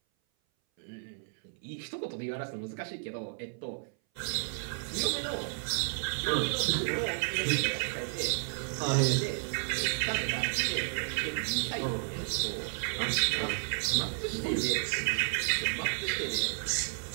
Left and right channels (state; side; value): silent; left; 56 dB below the other